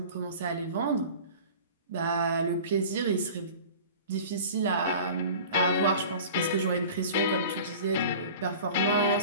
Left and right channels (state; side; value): inverted; both; correlation -0.40